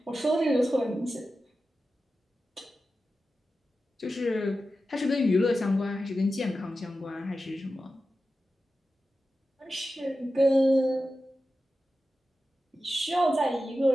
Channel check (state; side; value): normal; both; correlation 0.92